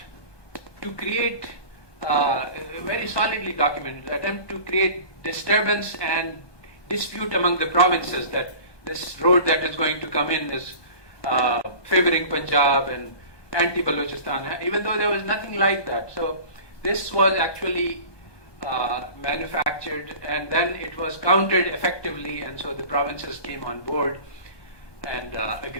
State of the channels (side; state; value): right; late; 1.2 ms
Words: to create, very solidly documented, attempt to create disturbance and dispute among the provinces that this road that is going to come in is favoring Punjab and anti-Balochistan, even though there was nothing like that. So this was actually manufactured, and then it was countered effectively, and so the provinces came on board and